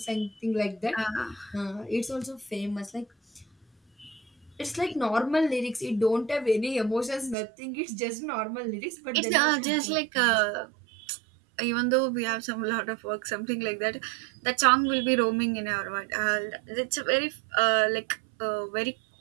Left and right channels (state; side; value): drops out; left; at 7.4 s